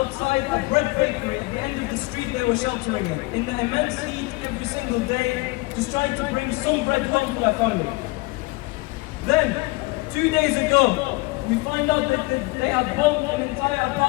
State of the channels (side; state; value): right; quieter; 24.1 dB